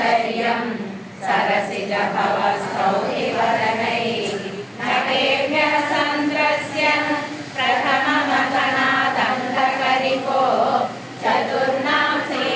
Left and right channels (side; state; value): both; identical; correlation 1.00